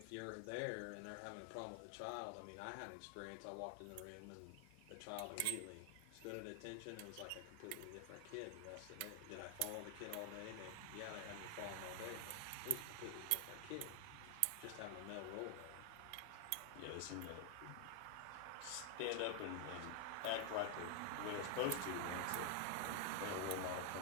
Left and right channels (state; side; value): different; both; correlation 0.00